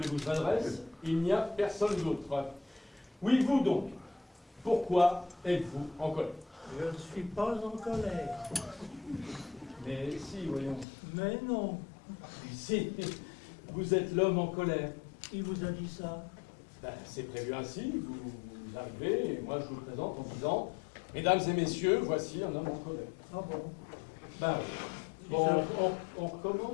que je m'adresse? Il n'y a personne d'autre. Oui, vous donc, pourquoi êtes-vous en colère? Je ne suis pas en colère. Mais si, voyons. Mais non. Si, vous êtes l'homme en colère. Qui vous a dit ça? Ben, c'est prévu ainsi, vous arrivez, et moi je vous le présente en disant, mesdames et messieurs, voici un homme en colère. Ah bon? Ben, bon, on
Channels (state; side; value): drops out; right; at 10.9 s